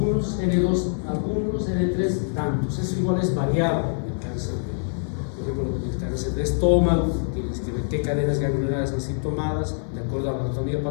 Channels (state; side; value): silent; right; 55 dB below the other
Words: N2 algunos, N3 tantos. Eso igual es variable el cáncer. Por ejemplo, el cáncer de estómago, tienes que ver qué cadenas ganglionares han sido tomadas, de acuerdo a la anatomía